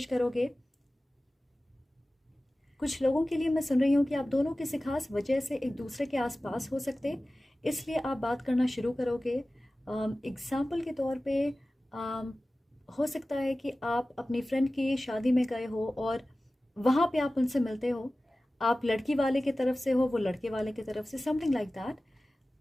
करोगे। कुछ लोगों के लिए मैं सुन रही हूँ कि आप दोनों किसी खास वजह से एक दूसरे के आसपास हो सकते, इसलिए आप बात करना शुरू करोगे। एग्ज़ाम्पल के तौर पे हो सकता है कि आप अपनी फ्रेंड की शादी में गए हो और वहाँ पे आप उनसे मिलते हो। आप लड़की वाले की तरफ से हो, वो लड़के वाले की तरफ से, समथिंग लाइक दैट।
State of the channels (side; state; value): both; normal; correlation 0.96